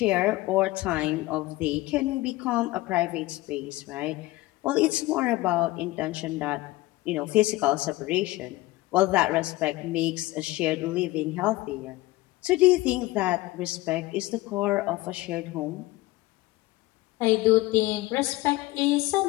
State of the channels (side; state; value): right; quieter; 19.2 dB